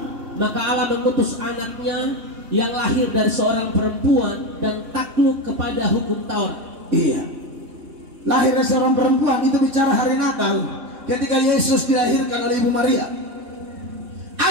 maka Allah mengutus anaknya yang lahir dari seorang perempuan dan takluk kepada hukum Taurat. Iya, lahir dari seorang perempuan itu bicara hari Natal, ketika Yesus dilahirkan oleh Ibu Maria.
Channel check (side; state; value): left; late; 3.6 ms